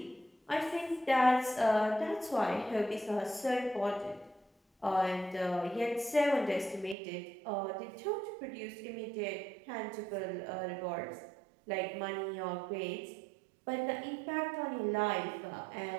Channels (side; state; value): left; drops out; at 7.0 s